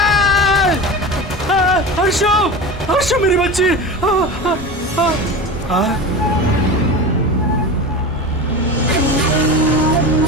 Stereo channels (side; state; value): both; normal; correlation 0.28